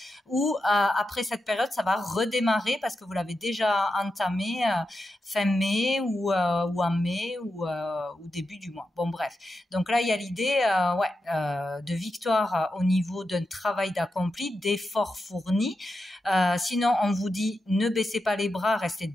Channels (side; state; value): both; normal; correlation 0.89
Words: Ou après cette période, ça va redémarrer parce que vous l'avez déjà entamé fin mai ou en mai ou début du mois. Bon, bref. Donc là, il y a l'idée de victoire au niveau d'un travail d'accompli, d'efforts fournis. Sinon, on vous dit ne baissez pas les bras, restez